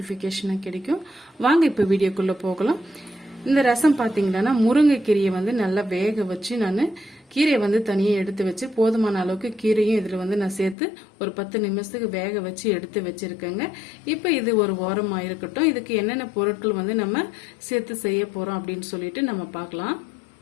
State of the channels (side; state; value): right; drops out; at 10.8 s